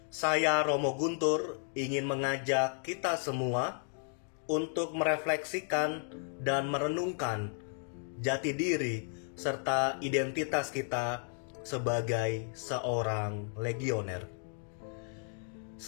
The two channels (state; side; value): silent; right; 55 dB below the other